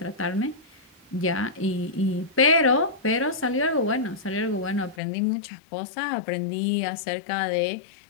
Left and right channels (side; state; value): right; drops out; at 5.0 s